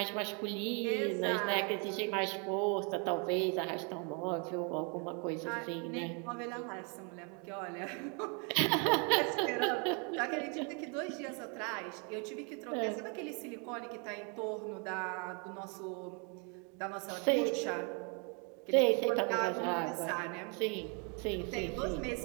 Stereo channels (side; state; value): left; quieter; 35.7 dB